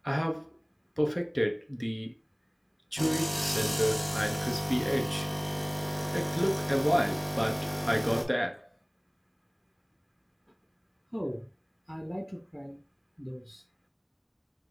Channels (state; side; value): identical; both; correlation 1.00